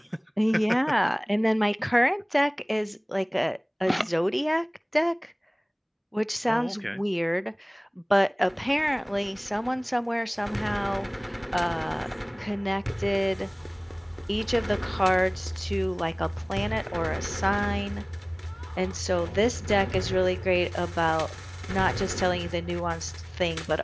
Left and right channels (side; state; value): both; identical; correlation 1.00